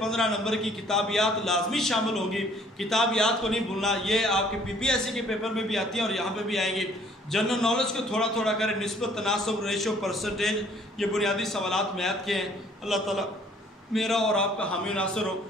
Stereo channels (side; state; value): both; normal; correlation 0.59